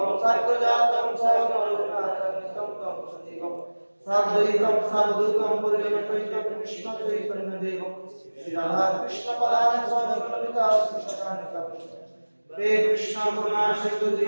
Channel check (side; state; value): both; inverted; correlation -1.00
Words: साग्रजातं सागररघुनाथान्वितं तं सजीवं साद्वैतं सावधूतं परिजनसहितं कृष्णचैतन्यदेवं श्रीराधाकृष्णपदानि स्वामिनमिता श्रीशतानिकं। हे कृष्ण करुणा सिंधु